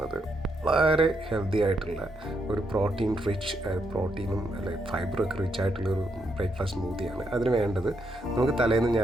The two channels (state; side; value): normal; both; correlation 0.79